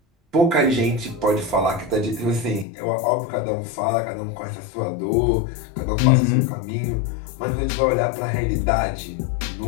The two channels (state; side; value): drops out; right; at 2.7 s